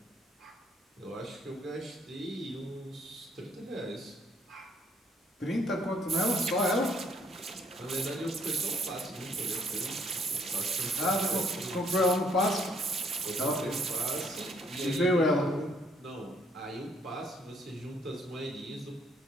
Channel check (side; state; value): both; normal; correlation 0.66